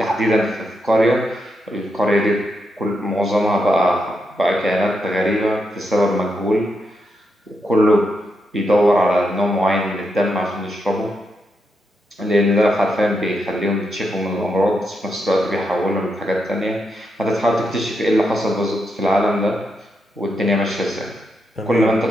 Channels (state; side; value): normal; both; correlation 0.83